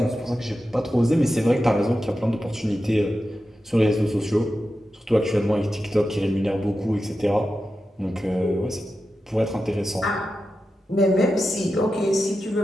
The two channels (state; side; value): normal; both; correlation 0.91